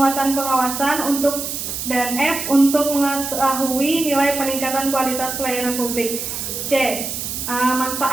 pengawasan. Dan F. Untuk mengetahui nilai peningkatan kualitas pelayanan publik. C.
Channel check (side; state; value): right; noise; hiss, 5 dB below the sound